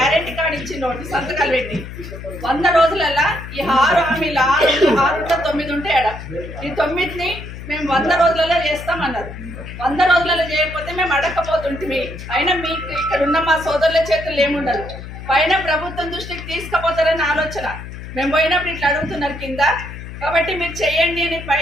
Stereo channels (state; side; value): noise; left; hum, 11 dB below the sound